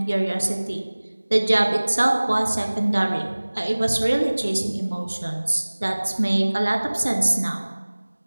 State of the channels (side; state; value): both; inverted; correlation -1.00